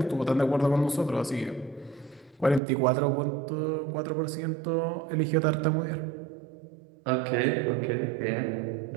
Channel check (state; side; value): drops out; left; at 2.6 s